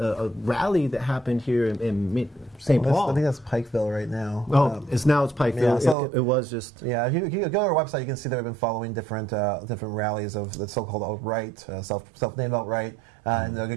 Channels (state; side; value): drops out; left; at 6.0 s